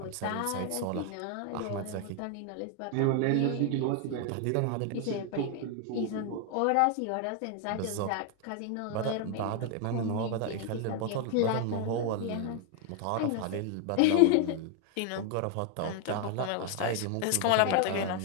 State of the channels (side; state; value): both; different; correlation 0.00